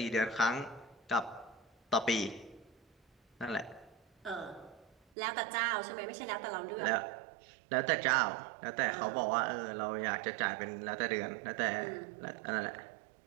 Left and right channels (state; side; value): drops out; left; at 5.0 s